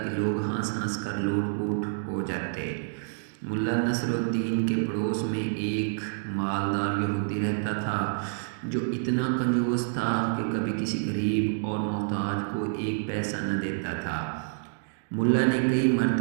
کہ لوگ ہنس ہنس کر لوٹ پوٹ ہو جاتے۔ ملا نصر الدین کے پڑوس میں ایک مالدار یہودی رہتا تھا جو اتنا کنجوس تھا کہ کبھی کسی غریب اور محتاج کو ایک پیسہ نہ دیتا تھا۔ ملا نے کئی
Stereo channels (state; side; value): silent; left; digital silence